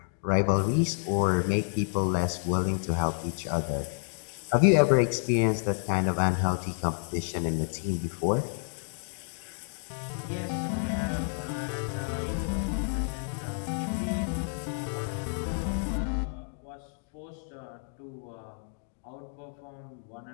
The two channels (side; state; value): right; silent; 58 dB below the other